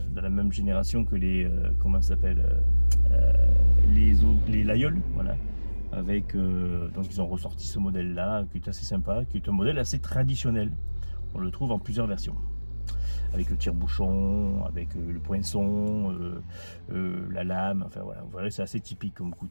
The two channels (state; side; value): inverted; both; correlation -1.00